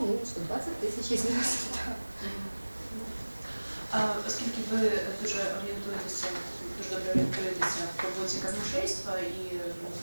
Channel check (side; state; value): both; inverted; correlation -1.00